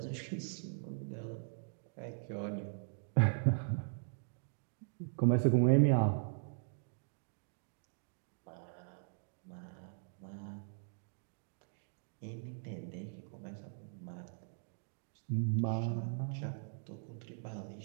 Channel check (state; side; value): silent; left; digital silence